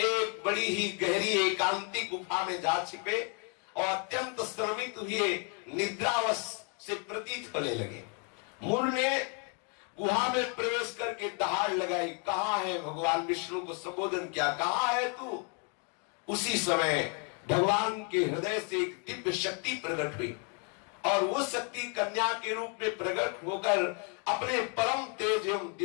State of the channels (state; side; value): quieter; right; 37.9 dB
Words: बड़ी ही गहरी एकांतिक गुफा में जा छिपे और अत्यंत श्रमित हुए निद्रावश से प्रतीत होने लगे। मुर ने गुहा में प्रवेश करके दहाड़ लगाई, कहाँ है? भगवान विष्णु को संबोधन किया, कहाँ है तू? उसी समय भगवान के हृदय से एक दिव्य शक्ति प्रकट हुई और वो शक्ति कन्या के रूप में प्रकट होकर अपने परम तेज एवं